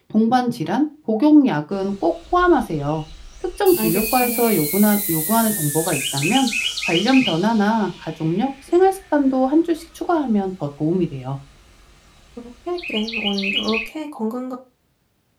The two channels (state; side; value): identical; both; correlation 1.00